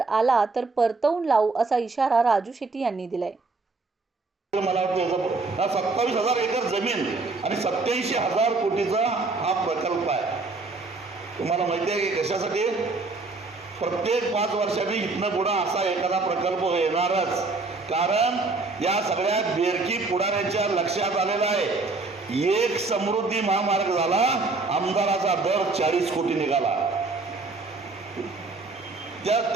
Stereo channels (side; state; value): left; quieter; 3.7 dB